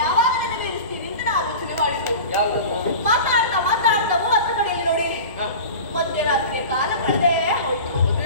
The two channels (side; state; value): both; inverted; correlation -0.34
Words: ಯಾವಾಗ ನೆರವೇರಿಸ್ತೀರಿ ಅಂತ ನಾನು ಆಲೋಚನೆ ಮಾಡಿದ್ದು. ಮಾತಾಡ್ತಾ ಮಾತಾಡ್ತಾ 30 ಕಡೆಯಲ್ಲಿ ನೋಡಿ ಮಧ್ಯರಾತ್ರಿಯ ಕಾಲ ಕಳೆದೇ ಹೋಯ್ತು.